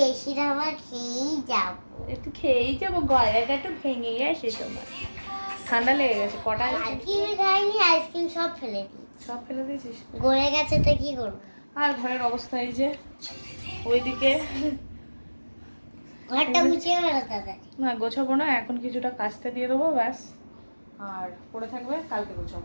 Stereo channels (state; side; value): inverted; both; correlation -1.00